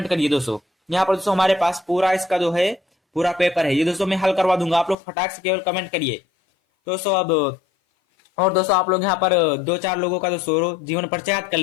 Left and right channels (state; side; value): drops out; right; at 5.0 s